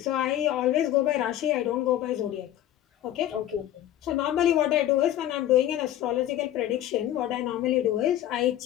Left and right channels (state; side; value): quieter; right; 12.5 dB